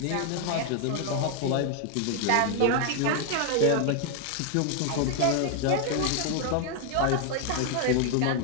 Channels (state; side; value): different; both; correlation 0.00